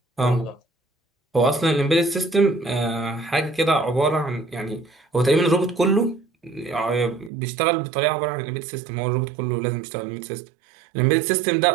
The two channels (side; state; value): left; drops out; at 7.3 s